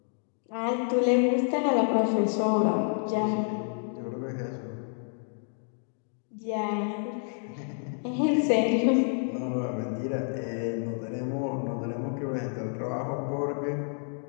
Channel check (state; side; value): silent; right; 58 dB below the other